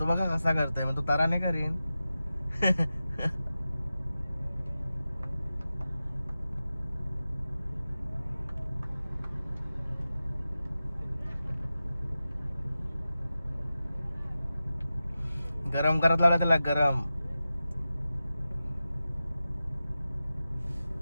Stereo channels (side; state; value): both; inverted; correlation -0.93